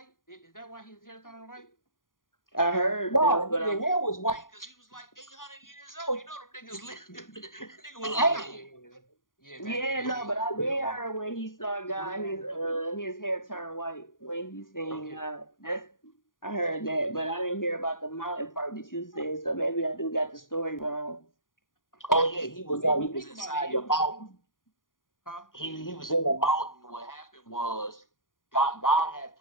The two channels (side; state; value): right; late; 0.90 ms